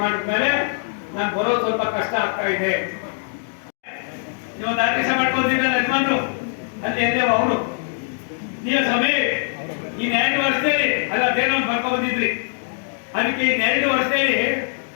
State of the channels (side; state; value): right; silent; digital silence